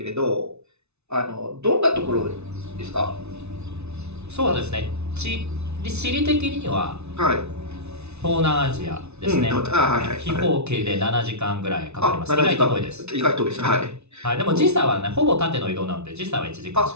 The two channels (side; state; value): left; late; 0.81 ms